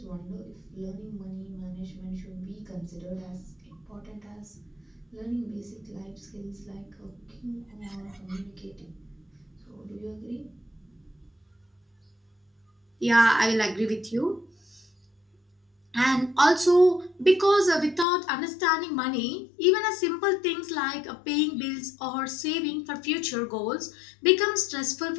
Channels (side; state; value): right; drops out; at 18.1 s